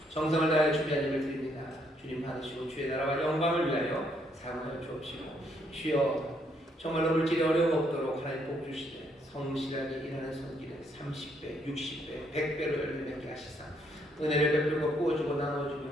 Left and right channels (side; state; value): both; normal; correlation 0.71